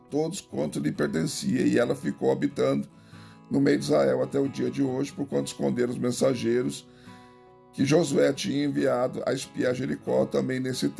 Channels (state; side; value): identical; both; correlation 1.00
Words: quanto lhe pertencia, e ela ficou habitando no meio de Israel até o dia de hoje, porquanto esconderam os mensageiros que Josué tinha enviado a espiar Jericó. Também nesse